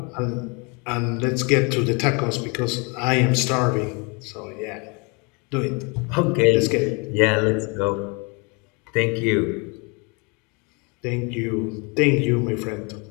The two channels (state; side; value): quieter; right; 31.3 dB